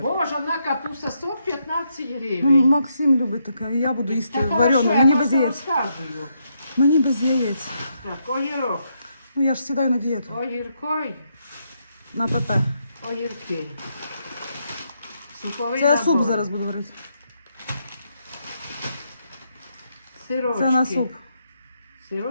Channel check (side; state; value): both; inverted; correlation -0.79